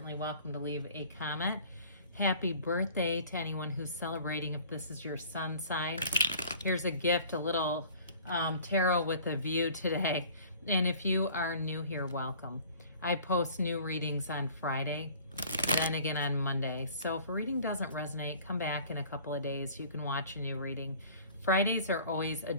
welcome to leave a comment. Happy birthday to anyone who's celebrating if this is your sun sign. Here's a gift, a little tarot with a view today. And if you are new here, welcome. I post new readings on Friday, then again on Monday. So if a reading doesn't resonate, come back in a couple of days. You can watch a new reading. Fridays are always a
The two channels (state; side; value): inverted; both; correlation -0.49